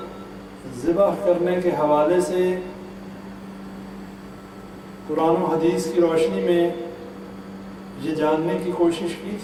ذبح کرنے کے حوالے سے قرآن و حدیث کی روشنی میں یہ جاننے کی کوشش کی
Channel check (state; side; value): identical; both; correlation 1.00